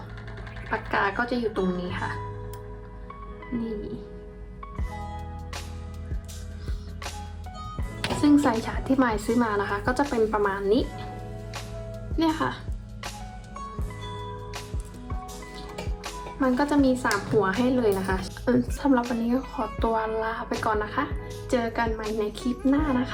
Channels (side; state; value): both; identical; correlation 1.00